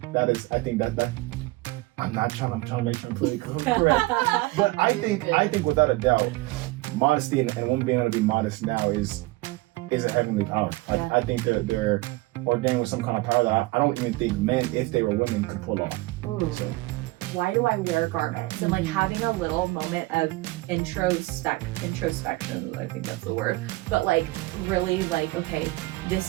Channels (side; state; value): left; quieter; 21.1 dB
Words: that is, I think that I'm trying to make sure I'm fully correct. But I think without a doubt, modesty and women being able to be modest now is a heavenly power. Like I think they're ordained with some kind of power that I don't even think men, if they were women, could pull off. So. Why do I wear garments? And like having a little moment of introspection, I think that's the word, but like really like, okay,